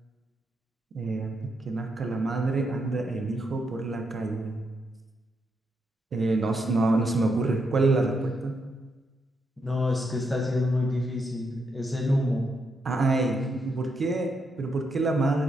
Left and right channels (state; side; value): normal; both; correlation 0.80